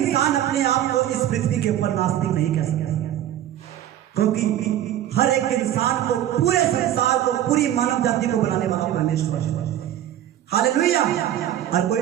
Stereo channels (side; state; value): left; quieter; 11.9 dB